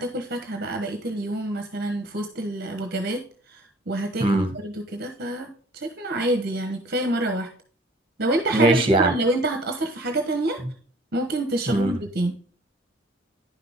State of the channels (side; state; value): both; normal; correlation 0.53